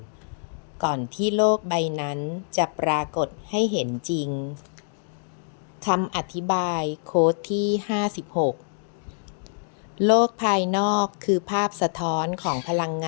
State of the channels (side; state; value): right; silent; digital silence